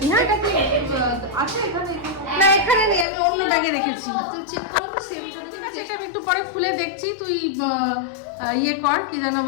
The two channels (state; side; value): drops out; right; at 3.1 s